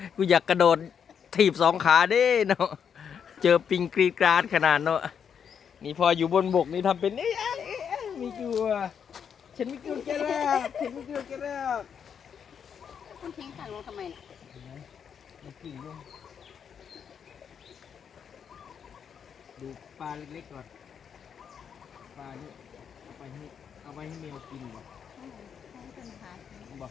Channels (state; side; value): quieter; right; 7.5 dB